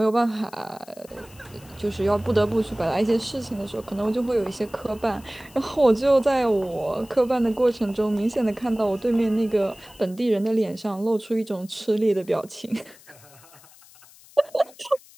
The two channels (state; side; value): noise; left; hiss, 24 dB below the sound